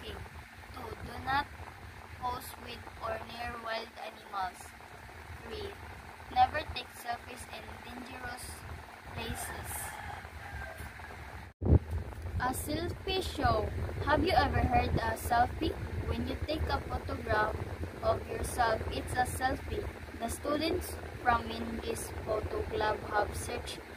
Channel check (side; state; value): both; identical; correlation 1.00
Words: 2. Do not pose with or near wild animals. 3. Never take selfies in dangerous places. A selfie show. Have you ever heard a selfie? When you take a photograph of yourself, it's a selfie. The students from this photo club have searched